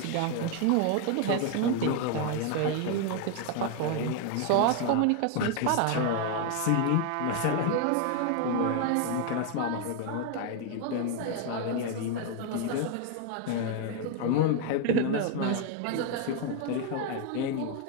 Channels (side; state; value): both; different; correlation 0.01